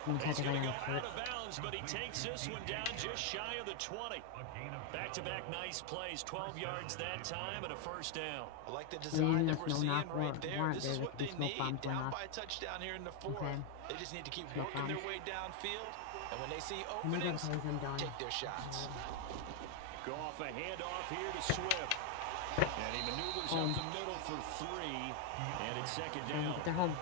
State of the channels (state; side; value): different; both; correlation 0.00